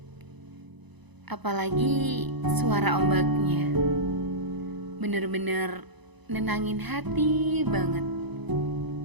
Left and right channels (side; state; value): left; late; 1.0 ms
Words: apalagi suara ombaknya. Bener-bener nenangin hati banget.